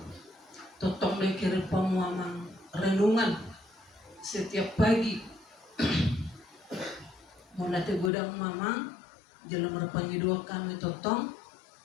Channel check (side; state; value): right; drops out; at 8.1 s